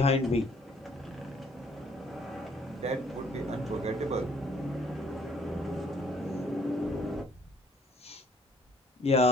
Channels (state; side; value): normal; both; correlation 0.62